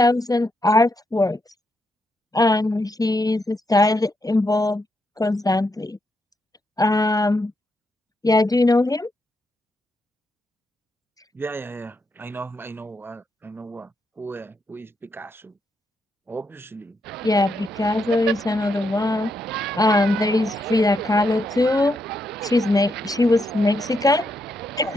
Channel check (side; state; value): both; normal; correlation 0.80